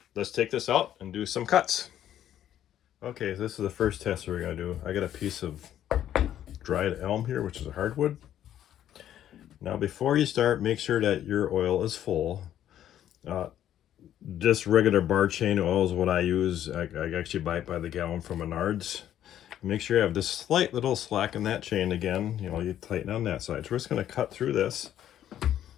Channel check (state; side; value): quieter; right; 11.2 dB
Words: let's take this out and do some cuts. Okay, this is the first test we're gonna do. I got a piece of dried elm here, which is a hardwood. Now before you start, make sure that your oil is full. Just regular bar chain oil is what I use. I actually buy it by the gallon from Menards. Make sure you have this slight little slack in that chain again. You know, you tighten on that side. So we're just gonna cut through this